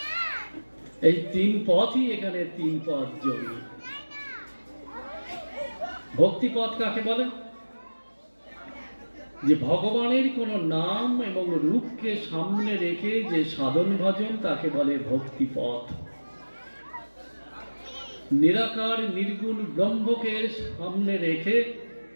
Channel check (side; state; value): both; inverted; correlation -1.00